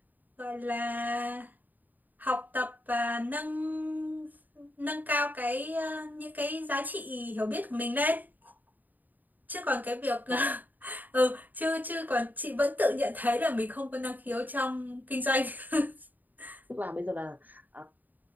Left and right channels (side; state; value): left; late; 0.085 ms